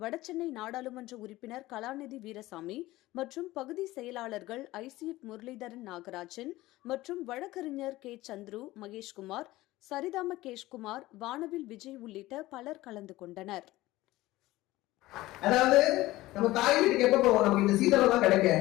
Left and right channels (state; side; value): quieter; right; 17.7 dB